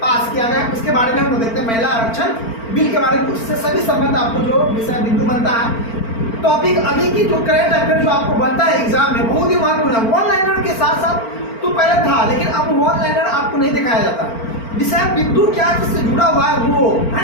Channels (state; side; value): late; right; 4.4 ms